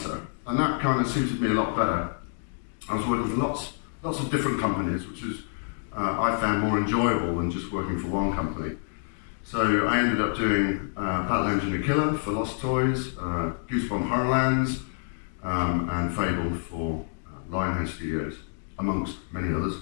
and that kind of suited me a lot better. I was working for lots of different companies, which is I found more enjoyable than just working for one company. So I ended up doing Battle Engine the Killer for Lost Toys, Goosebump Horrorlands, and Fable for Lionhead Studios, amongst many others.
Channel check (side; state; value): right; silent; digital silence